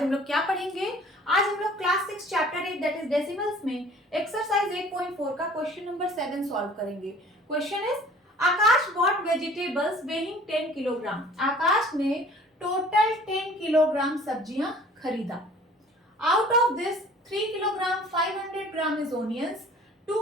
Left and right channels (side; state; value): both; normal; correlation 0.50